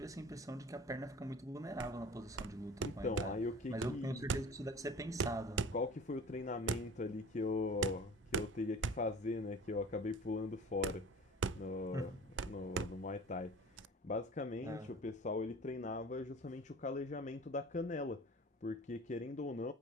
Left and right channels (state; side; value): normal; both; correlation 0.42